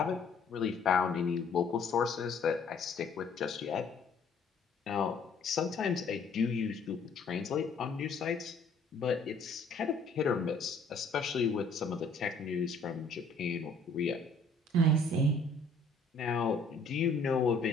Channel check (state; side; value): quieter; right; 3.6 dB